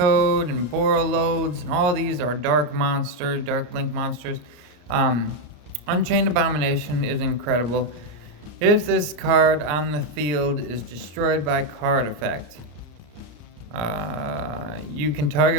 and borrow loads, and all these are Dark Link monsters. Unchained Abomination is incredible. If this card on the field is destroyed by card effect, you can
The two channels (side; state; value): left; late; 34 ms